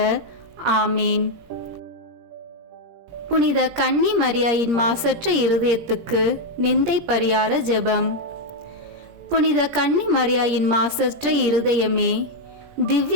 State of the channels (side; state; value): left; late; 17 ms